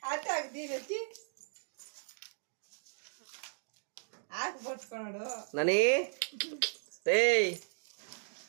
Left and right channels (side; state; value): left; silent; digital silence